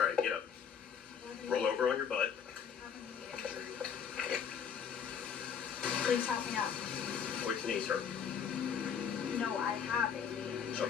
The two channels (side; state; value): right; quieter; 7.4 dB